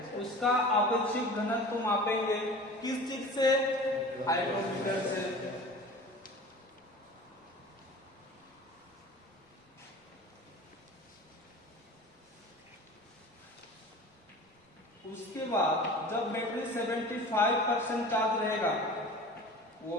उसका आपेक्षिक घनत्व मापेंगे। किस चीज से? हाइड्रोमीटर से। उसके बाद जब बैटरी 75% चार्ज रहेगा वो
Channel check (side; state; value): both; normal; correlation 0.39